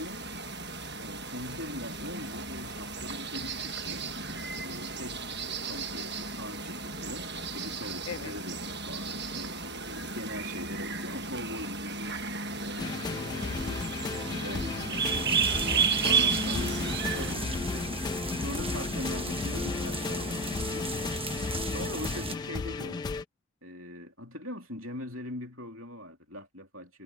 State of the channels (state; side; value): normal; both; correlation 0.20